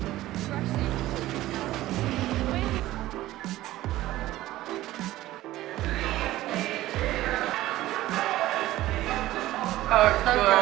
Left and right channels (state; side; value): quieter; left; 15.8 dB